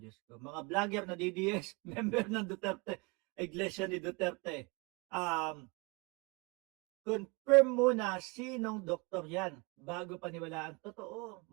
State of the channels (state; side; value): quieter; left; 28.3 dB